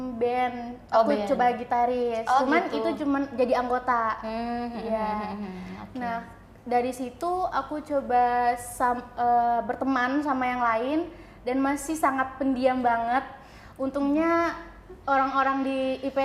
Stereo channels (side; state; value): both; identical; correlation 1.00